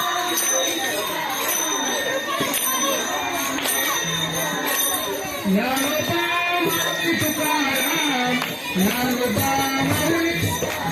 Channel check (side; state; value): both; identical; correlation 1.00